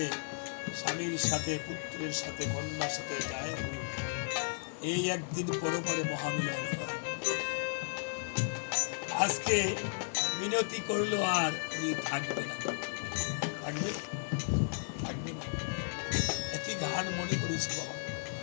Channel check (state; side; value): silent; right; digital silence